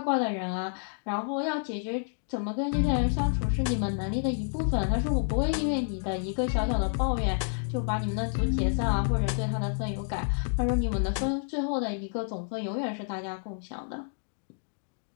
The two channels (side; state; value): right; silent; digital silence